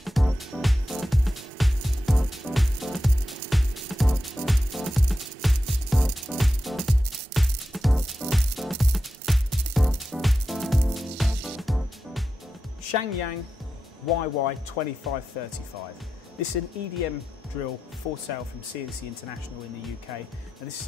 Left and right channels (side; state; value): both; normal; correlation 0.90